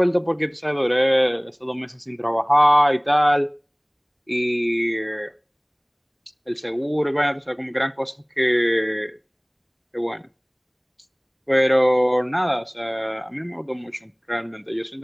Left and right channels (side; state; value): both; identical; correlation 1.00